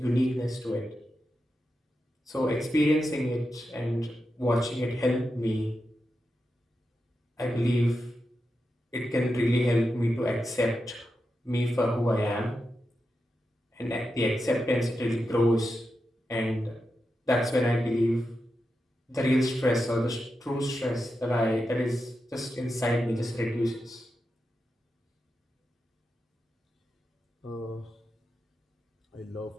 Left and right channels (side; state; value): both; normal; correlation 0.88